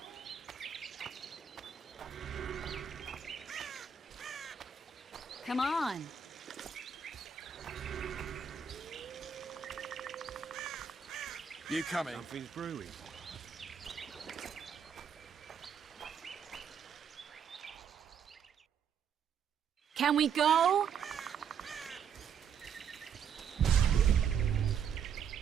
Come on. You coming? Something's brewing. Can we go?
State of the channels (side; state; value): left; quieter; 7.2 dB